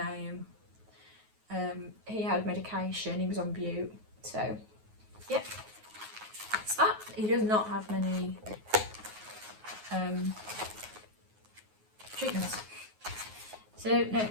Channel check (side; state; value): left; late; 9.4 ms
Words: he had medication, he was on bute, so yeah, that's that. He does not have many treatments. So now